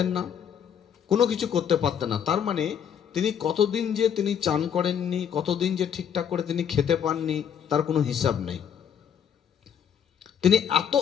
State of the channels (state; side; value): quieter; right; 8.3 dB